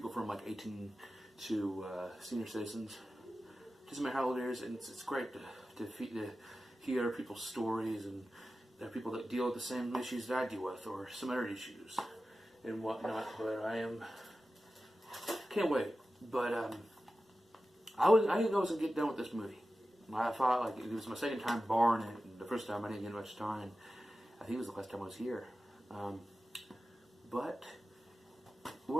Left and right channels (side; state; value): both; normal; correlation 0.94